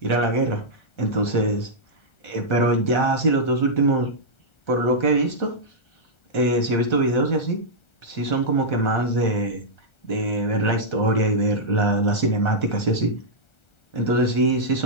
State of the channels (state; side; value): late; right; 1.3 ms